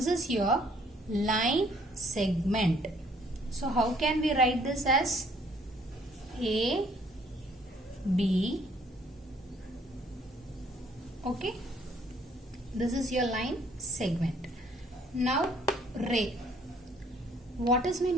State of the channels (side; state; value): both; normal; correlation 0.62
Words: is your line segment. So how can we write this as? A, B, okay? This is your line segment. Now ray. What is meant